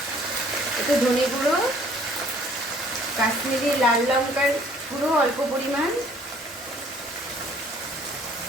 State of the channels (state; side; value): normal; both; correlation 0.58